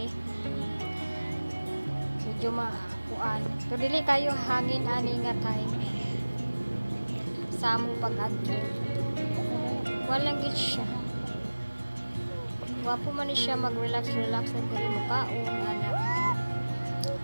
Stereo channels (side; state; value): both; inverted; correlation -1.00